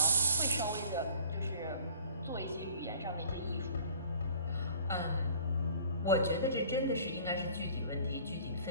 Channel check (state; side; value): inverted; both; correlation -0.49